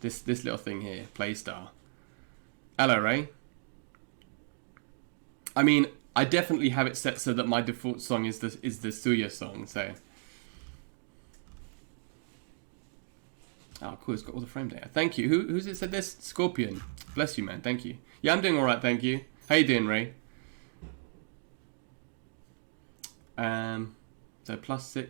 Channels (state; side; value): silent; left; digital silence